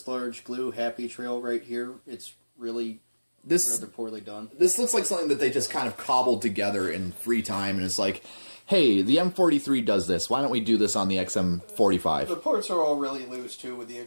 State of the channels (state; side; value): inverted; both; correlation -1.00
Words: large glue happy trail right here. It's really rather poorly done. This looks like something that they just kind of cobbled together in free time, and it's like, hey, the M43 does this. Why don't we do this on the XM45? The parts are all really loose, too, with the